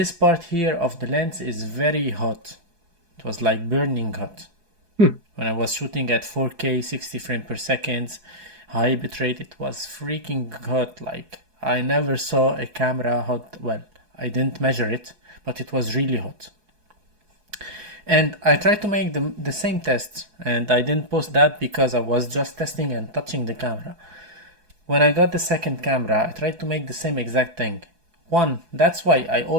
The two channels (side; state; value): left; late; 4.7 ms